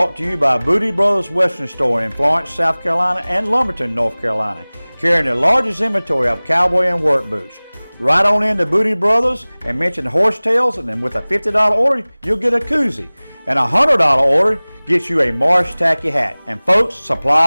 to you by Booty Brothers Western Store in Florence, South Carolina and Lumberton, North Carolina, carrying the largest inventory of cowboy and work boots. Right on into Booty Brothers and mention Horsetails, and then with a $50 order, you'll get a koozie. And a $100 order gets you a Marsh Tacky hat. And folks,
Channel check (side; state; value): both; inverted; correlation -1.00